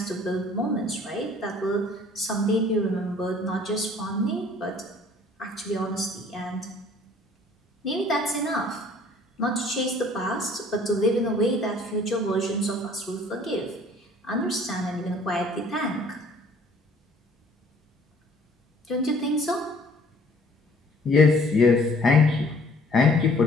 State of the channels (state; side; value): normal; both; correlation 0.55